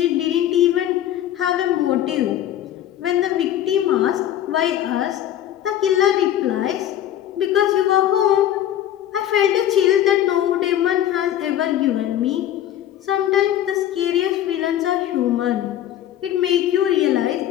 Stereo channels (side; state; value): right; quieter; 11.7 dB